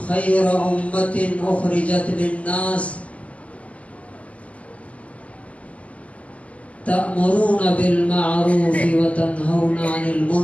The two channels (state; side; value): late; right; 0.064 ms